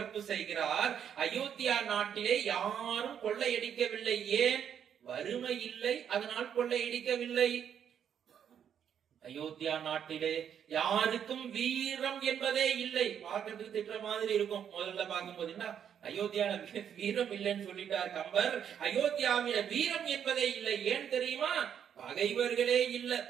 செய்கிறார். அயோத்தியா நாட்டிலே யாரும் கொள்ளையடிக்கவில்லை. ஏன்? வறுமை இல்லை, அதனால் கொள்ளையடிக்கவில்லை. அயோத்தியா நாட்டிலே யாருக்கும் வீரம் என்பதே இல்லை. பார்க்கறதுக்கு திட்டுற மாதிரி இருக்கும் முதல்ல பார்க்கும்போது. என்ன அயோத்தியால வீரம் இல்லைன்னு சொல்லிட்டார் கம்பர். அயோத்தியாவில வீரம் என்பதே இல்லை. ஏன் தெரியுமா? பகைவர்களே இல்ல.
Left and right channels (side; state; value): left; quieter; 8.6 dB